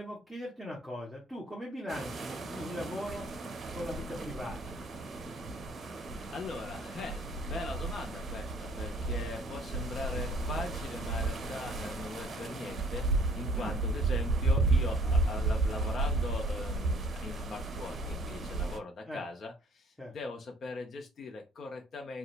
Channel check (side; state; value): both; normal; correlation 0.57